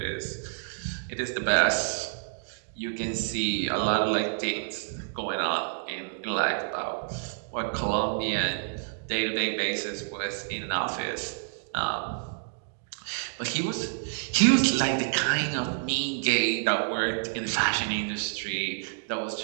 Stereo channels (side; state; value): left; silent; digital silence